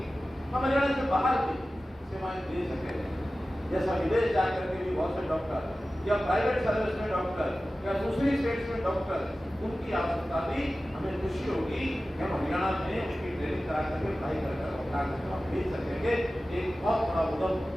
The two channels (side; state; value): both; normal; correlation 0.95